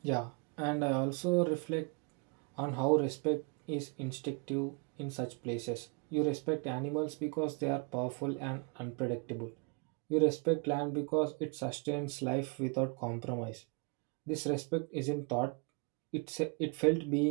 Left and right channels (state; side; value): quieter; left; 33.6 dB